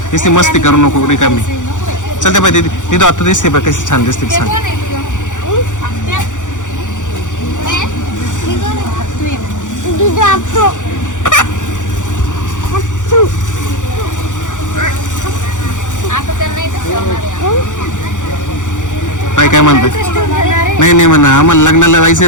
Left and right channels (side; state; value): right; late; 0.86 ms